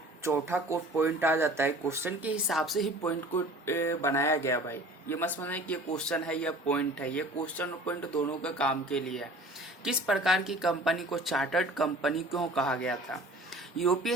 चौथा को पॉइंट आ जाता है। क्वेश्चन के हिसाब से ही पॉइंट को बनाया गया भाई। ये मत समझना कि ये क्वेश्चन है या पॉइंट है। ये क्वेश्चन और पॉइंट दोनों का काम के लिए है। किस प्रकार की कंपनी को चार्टर्ड कंपनी क्यों कहा गया था? यूरोपीय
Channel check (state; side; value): normal; both; correlation 0.45